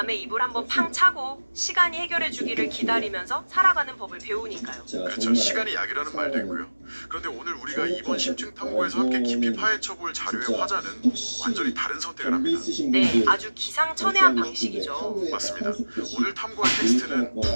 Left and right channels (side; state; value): both; inverted; correlation -1.00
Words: 이불 한번 팡 차고 시간이 해결해 주기를 기다리면서 살아가는 법을 배우니까요. 그렇죠. 시간이 약이라는 말도 있고요. 그런데 오늘 우리가 이번 심층 탐구에서 함께 깊이 파헤쳐볼 자료의 화자는 완전히 다른 선택을 합니다. 네, 아주 기상천외한 방식이죠. 맞습니다. 오늘 탐구할 텍스트는